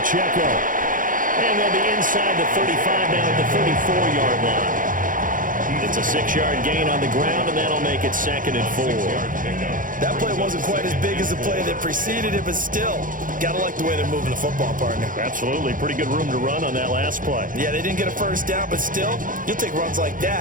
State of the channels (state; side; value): late; left; 0.39 ms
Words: And they'll be inside the 35 now at the 34-yard line. It's a 6-yard gain on the ground, and that'll make it 2nd and 4. That play wasn't quite as big as the play that preceded it, but still, got to like the way they're moving the football, partner. Absolutely. Pretty good room to run on that last play. Yeah, they didn't get a first down, but still, you'll take runs like